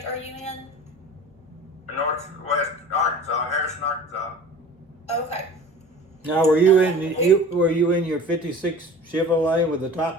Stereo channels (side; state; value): both; normal; correlation 0.40